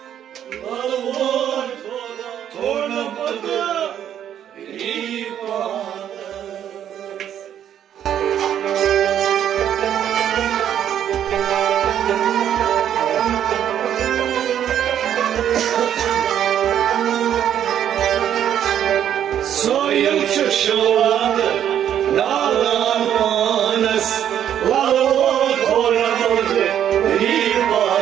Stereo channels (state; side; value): quieter; left; 10.0 dB